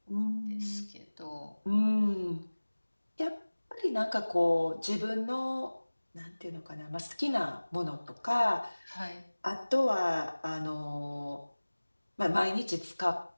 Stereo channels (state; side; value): inverted; both; correlation -1.00